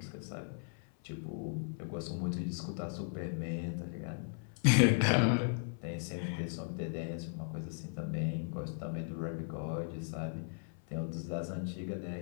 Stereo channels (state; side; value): silent; right; 53 dB below the other